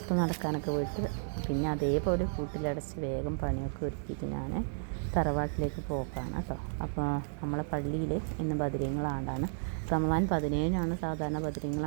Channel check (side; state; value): left; silent; digital silence